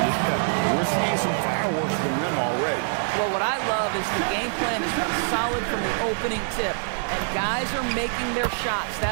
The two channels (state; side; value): silent; left; 62 dB below the other